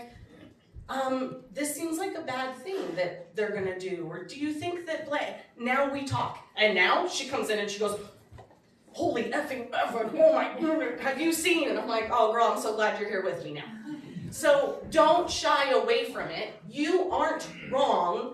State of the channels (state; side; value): identical; both; correlation 1.00